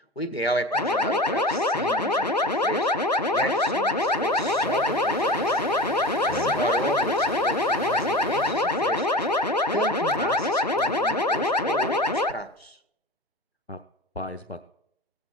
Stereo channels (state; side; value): normal; both; correlation 0.31